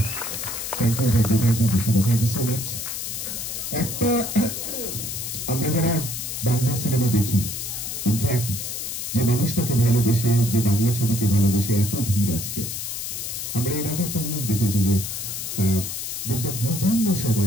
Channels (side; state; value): left; noise; hiss, 5 dB below the sound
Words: একটা আমরা যারা বাংলা সিনেমা দেখি, ইনফ্যাক্ট যে মানুষটাকে ভালোবেসে, যে বাংলা ছবিকে ভালোবেসে এত ভিড় আজকে, আমরা এর আগে একটা জিনিস দেখেছি যে বিভিন্ন